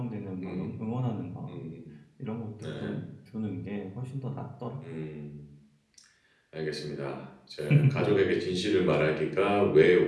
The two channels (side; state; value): both; identical; correlation 1.00